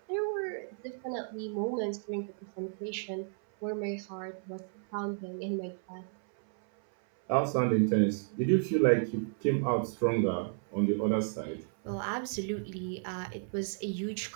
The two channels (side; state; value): left; silent; 56 dB below the other